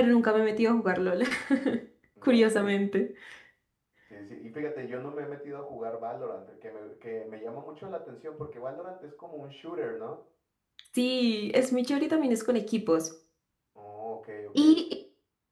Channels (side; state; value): both; identical; correlation 1.00